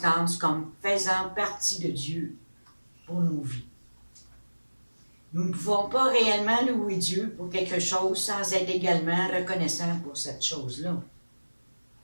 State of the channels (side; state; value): both; inverted; correlation -1.00